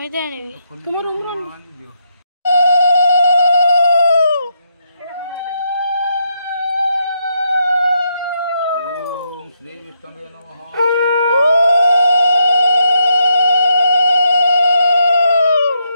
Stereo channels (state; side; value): inverted; both; correlation -0.80